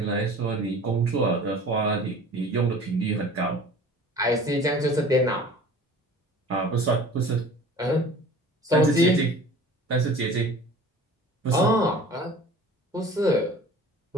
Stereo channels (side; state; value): both; normal; correlation 0.43